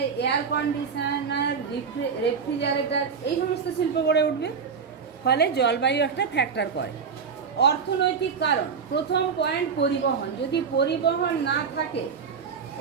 এয়ার কন্ডিশনার, রেফ্রিজারেটর, এই সমস্ত শিল্প গড়ে উঠবে। ফলে জলবায়ু একটা ফ্যাক্টর করে। অর্থনৈতিক কারণ, প্রথম পয়েন্ট পরিবহন। যদি পরিবহন না থাকে,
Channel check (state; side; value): quieter; left; 6.0 dB